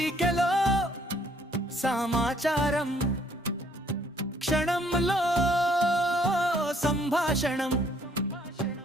సమాచారం, క్షణంలో సంభాషణం,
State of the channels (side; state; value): both; normal; correlation 0.64